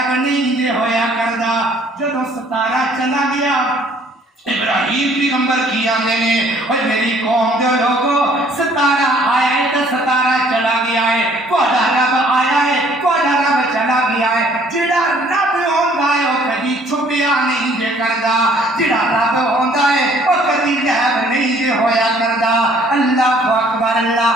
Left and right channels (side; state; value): both; normal; correlation 0.59